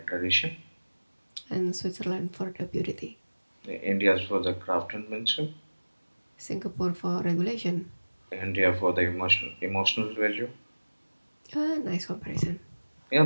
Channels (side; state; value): both; inverted; correlation -1.00